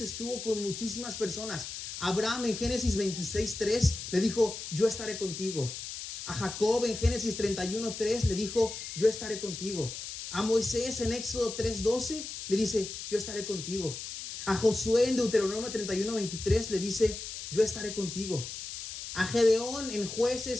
con muchísimas personas. Abraham en Génesis 26:3 le dijo, yo estaré contigo. A Jacob en Génesis 31:3 le dijo, yo estaré contigo. A Moisés en Éxodo 3:12 le dice, yo estaré contigo. A Josué en Deuteronomio 31:23 le dice, yo estaré contigo. A Gedeón en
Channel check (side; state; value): left; noise; hiss, 8 dB below the sound